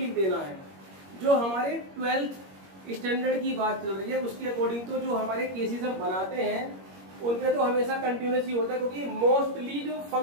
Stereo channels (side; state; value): left; late; 21 ms